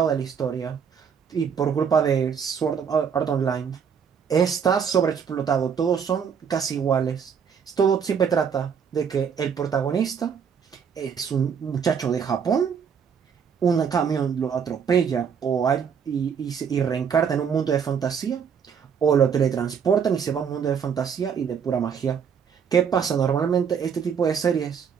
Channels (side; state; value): left; quieter; 7.1 dB